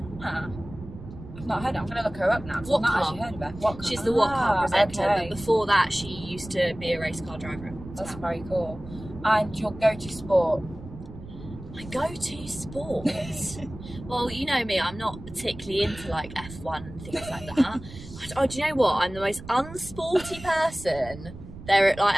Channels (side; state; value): right; noise; rumble, 14 dB below the sound